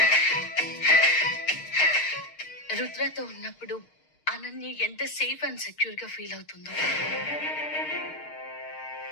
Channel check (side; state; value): right; late; 6.5 ms